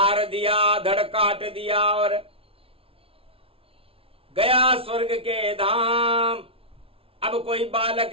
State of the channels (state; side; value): late; left; 0.27 ms